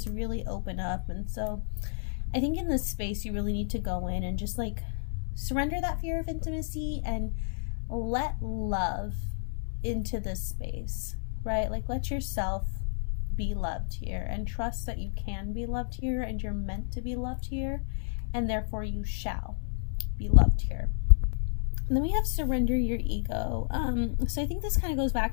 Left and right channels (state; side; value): silent; right; digital silence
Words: really open up. And so I think in this space you really need to go in and just like surrender that fear of intimacy and let love into this space, right? Like, let yourself be loved here, and trust that you can be loved here, and you're meant to be loved here, and therefore you shall be loved here. And then we have surrender your ego. So I think this kind of goes back